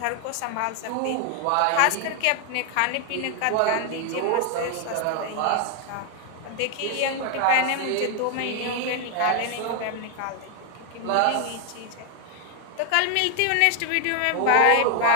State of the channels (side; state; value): both; different; correlation 0.00